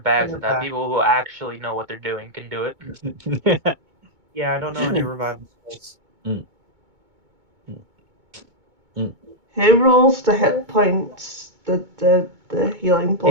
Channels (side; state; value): left; late; 2.2 ms